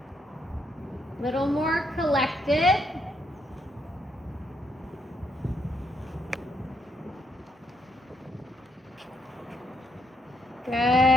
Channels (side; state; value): both; normal; correlation 0.76